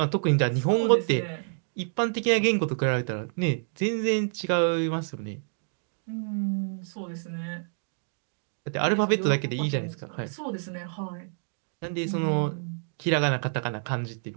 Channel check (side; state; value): left; silent; digital silence